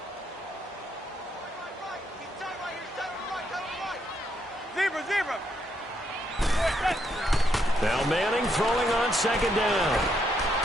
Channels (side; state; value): both; normal; correlation 0.76